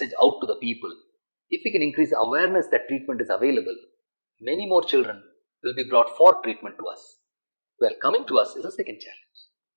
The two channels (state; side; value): inverted; both; correlation -1.00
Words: out to the people, if we can increase awareness that treatment is available, many more children will be brought for treatment to us. Well, coming to us is a second challenge.